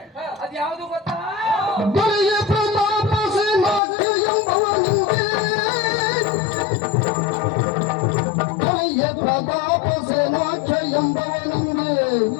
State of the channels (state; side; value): drops out; right; at 3.8 s